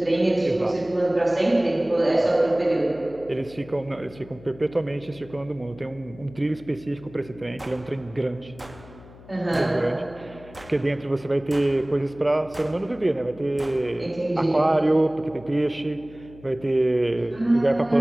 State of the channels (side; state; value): left; noise; hum, 20 dB below the sound